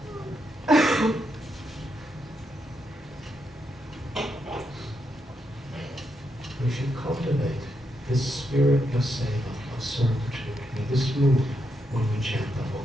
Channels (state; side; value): normal; both; correlation 0.81